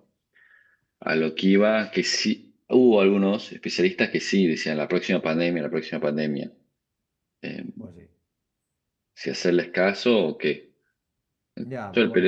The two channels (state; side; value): identical; both; correlation 1.00